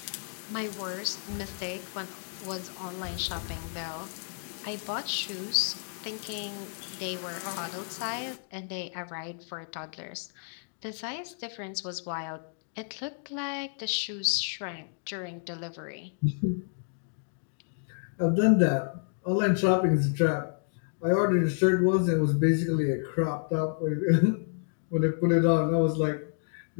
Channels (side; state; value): right; silent; digital silence